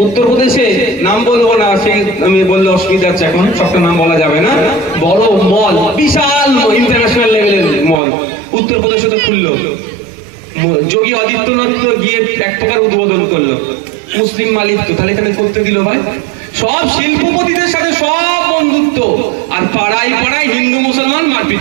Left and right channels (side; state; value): left; drops out; at 8.0 s